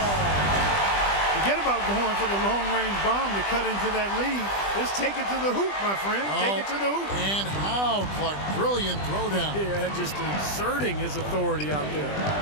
Forget about going for the long-range bomb to cut into that lead. Just take it to the hoop, my friend. Take it to the hoop. And how, Clark? Brilliant throwdown. Yeah, just exerting his authority out there.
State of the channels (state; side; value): late; right; 20 ms